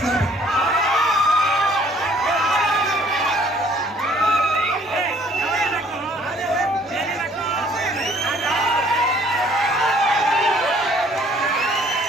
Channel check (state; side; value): normal; both; correlation 0.59